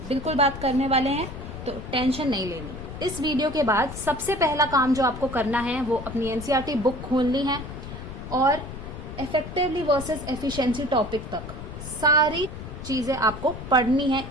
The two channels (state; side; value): noise; left; rumble, 10 dB below the sound